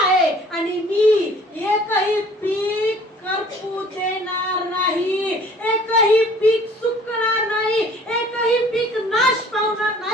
आहे आणि मी एकही पीक करपू देणार नाही, एकही पीक सुकणार नाही, एकही पीक नाश पावणार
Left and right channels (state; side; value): normal; both; correlation 0.53